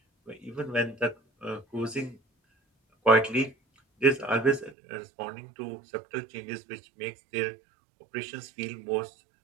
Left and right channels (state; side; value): drops out; left; at 4.8 s